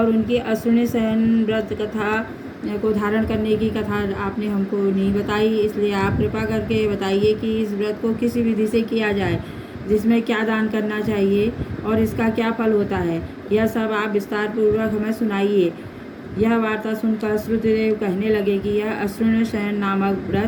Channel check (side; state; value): both; identical; correlation 1.00